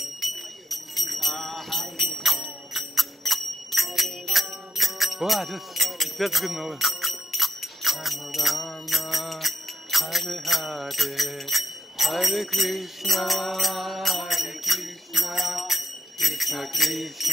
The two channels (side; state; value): both; normal; correlation 0.81